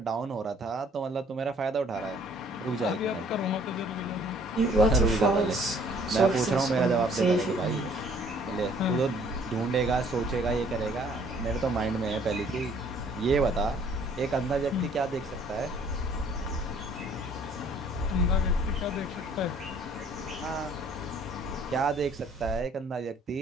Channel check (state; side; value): normal; both; correlation 0.58